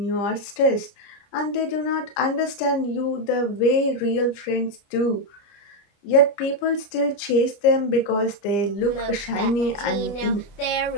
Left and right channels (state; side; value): late; right; 29 ms